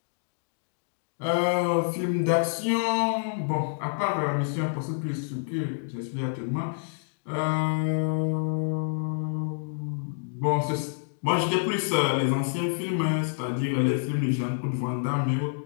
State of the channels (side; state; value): right; silent; digital silence